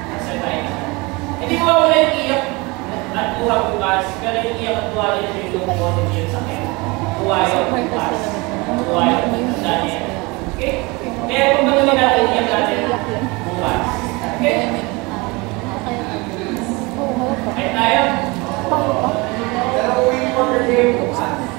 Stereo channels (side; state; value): left; quieter; 25.4 dB